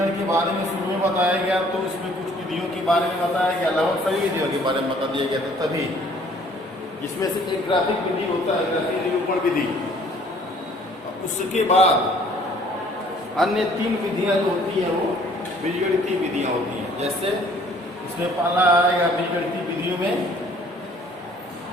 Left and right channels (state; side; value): normal; both; correlation 0.57